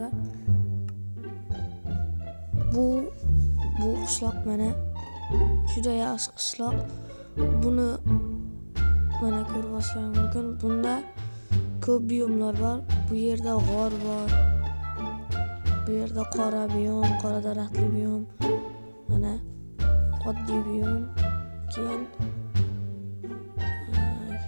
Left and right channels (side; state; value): both; inverted; correlation -1.00